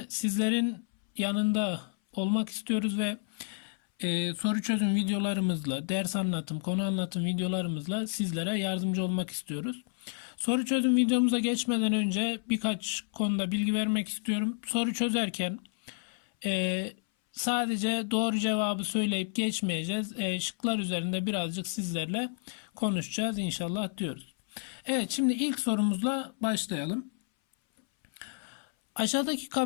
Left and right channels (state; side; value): silent; right; 58 dB below the other